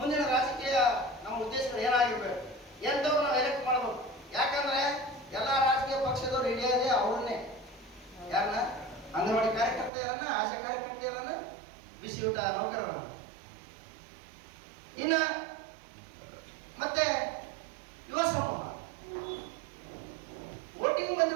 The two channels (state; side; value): drops out; left; at 9.9 s